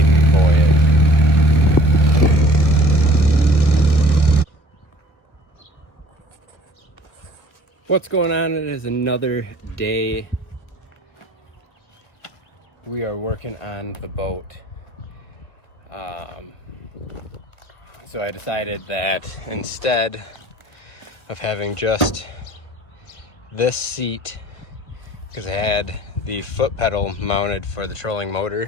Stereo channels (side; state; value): right; late; 1.1 ms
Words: voyage. What's going on? It is another day. We are working on the boat. So I decided that instead of having just this seat, because I had the foot pedal mounted for the trolling